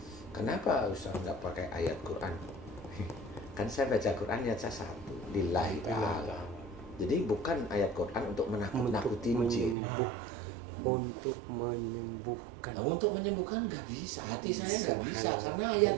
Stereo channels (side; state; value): left; drops out; at 9.8 s